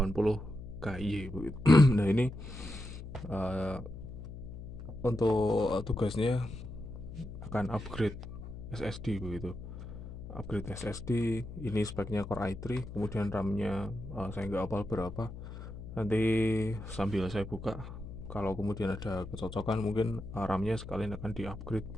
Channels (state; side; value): noise; left; hum, 11 dB below the sound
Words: KY begitu. Nah, ini uh, untuk tugasnya akan upgrade SSD begitu. Upgrade SSD ini speknya Core i3, kemudian RAM-nya saya nggak hafal berapa. Nanti sambil saya buka, kalau kemudian ada kecocokan mungkin RAM-nya sekalian akan di-upgrade